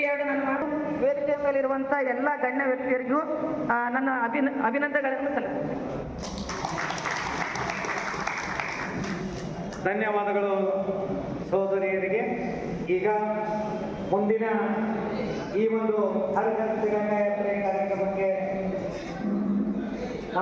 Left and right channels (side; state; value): both; identical; correlation 1.00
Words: ಎರಡು ನನ್ನ ಮಾತು ವೇದಿಕೆ ಮೇಲಿರುವಂತ ಎಲ್ಲ ಗಣ್ಯ ವ್ಯಕ್ತಿಯರಿಗೂ ನನ್ನ ಅಭಿನಂದನೆಗಳನ್ನು ಸಲ್ಲಿಸುತ್ತೇನೆ. ಧನ್ಯವಾದಗಳು ಸಹೋದರಿಯರಿಗೆ. ಈಗ ಮುಂದಿನ ಈ ಒಂದು ಹರಿಜನ ತಿರಂಗ ಯಾತ್ರೆ ಕಾರ್ಯಕ್ರಮಕ್ಕೆ